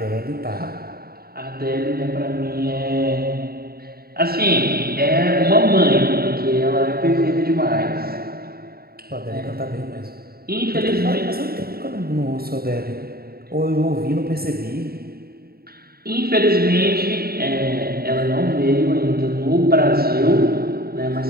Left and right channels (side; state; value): left; late; 0.45 ms